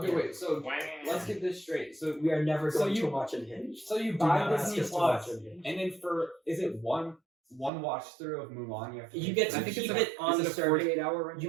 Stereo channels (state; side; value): drops out; left; at 7.7 s